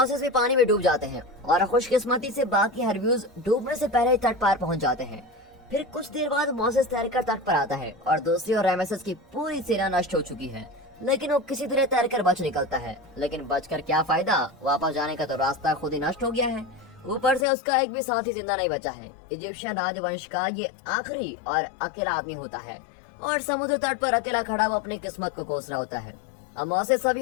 भी पानी में डूब जाते हैं और खुशकिस्मती से बाकी हरबियस डूबने से पहले ही तट पार पहुंच जाते हैं। फिर कुछ देर बाद मोसेस तैरकर तट पर आता है और दूसरी ओर रामेसेस की पूरी सेना नष्ट हो चुकी है, लेकिन वो किसी तरह तैरकर बच निकलता है। लेकिन बचकर क्या फायदा, वापस जाने का तो रास्ता खुद ही नष्ट हो गया है। ऊपर से उसका एक भी साथी जिंदा नहीं बचा है। इजिप्शियन राजवंश का ये आखिरी और अकेला आदमी होता है और समुद्र तट पर अकेला खड़ा वो अपनी किस्मत को कोस रहा होता है। अब मोसेस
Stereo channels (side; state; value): right; drops out; at 17.4 s